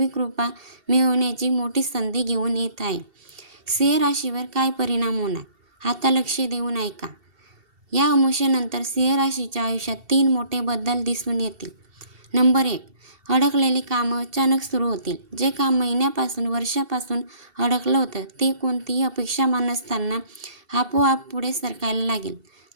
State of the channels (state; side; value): late; left; 2.7 ms